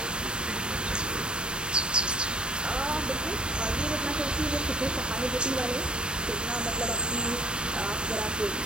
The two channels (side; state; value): left; late; 0.050 ms